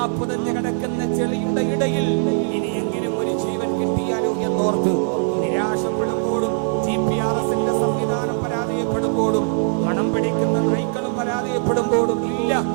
പുതഞ്ഞു കിടക്കുന്ന ചെളിയുടെ ഇടയിൽ ഇനിയെങ്കിലും ഒരു ജീവൻ കിട്ടിയാലോ എന്നോർത്ത് നിരാശപ്പെടുമ്പോഴും GPRSന്റെ സംവിധാനം പരാജയപ്പെടുമ്പോഴും മണം പിടിക്കുന്ന നായ്ക്കളും പരാജയപ്പെടുമ്പോഴും ഇല്ല,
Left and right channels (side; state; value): left; silent; digital silence